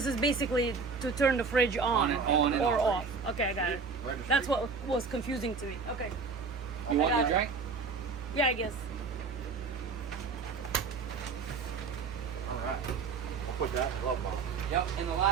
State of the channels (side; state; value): left; quieter; 4.9 dB